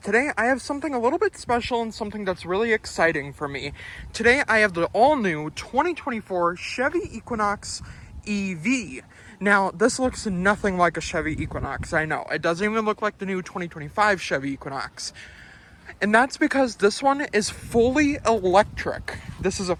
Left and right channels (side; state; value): both; identical; correlation 1.00